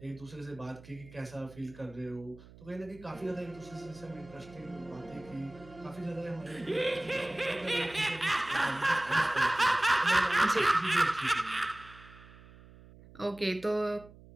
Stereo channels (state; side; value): noise; right; hum, 21 dB below the sound